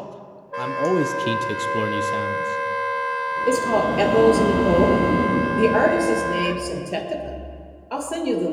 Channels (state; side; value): identical; both; correlation 1.00